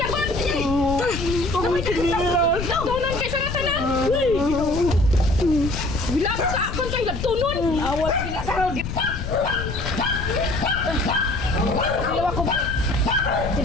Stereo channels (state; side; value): noise; left; rumble, 6 dB below the sound